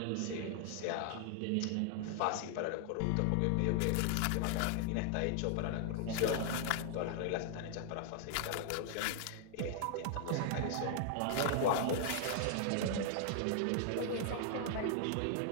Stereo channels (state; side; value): different; both; correlation 0.00